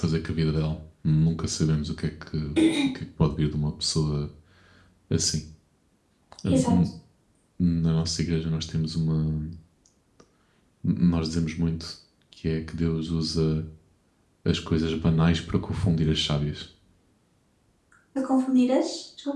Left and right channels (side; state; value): both; identical; correlation 1.00